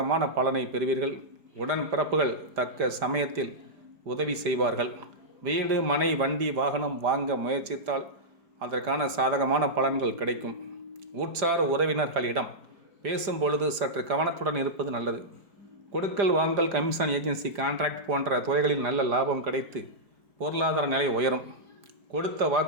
பலனை பெறுவீர்கள். உடன் பிறப்புகள் தக்க சமயத்தில் உதவி செய்வார்கள். வீடு, மனை, வண்டி, வாகனம் வாங்க முயற்சித்தால் அதற்கான சாதகமான பலன்கள் கிடைக்கும். உற்சார் உறவினர்களிடம் பேசும் பொழுது சற்று கவனத்துடன் இருப்பது நல்லது. கொடுக்கல் வாங்கல், கமிஷன் ஏஜென்சி, கான்ட்ராக்ட் போன்ற துறைகளில் நல்ல லாபம் கிடைத்து பொருளாதார நிலை உயரும். கொடுத்த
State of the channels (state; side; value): late; left; 5.0 ms